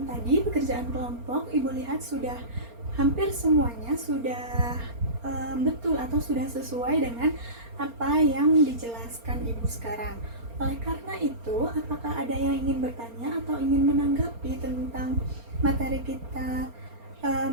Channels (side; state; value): left; late; 4.3 ms